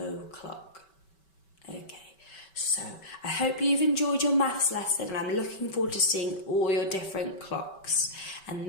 Okay, So I hope you've enjoyed your maths lesson, and I'm looking forward to seeing all your different clocks. And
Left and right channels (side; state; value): right; late; 5.2 ms